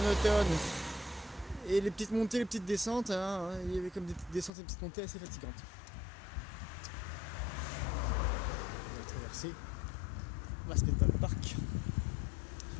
et les petites montées, les petites descentes, hein, il y avait comme des petites descentes et des petites montées assez fatigantes. On va traverser Maspetal Park.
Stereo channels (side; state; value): right; drops out; at 4.5 s